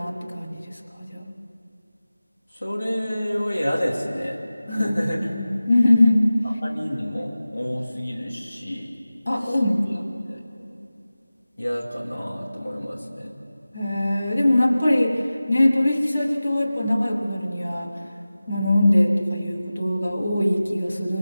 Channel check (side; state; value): both; inverted; correlation -0.96